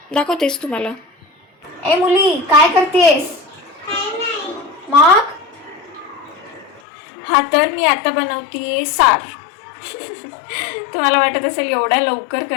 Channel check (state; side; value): drops out; right; at 6.8 s